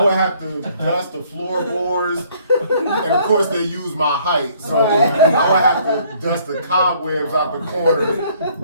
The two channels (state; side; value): inverted; both; correlation -0.61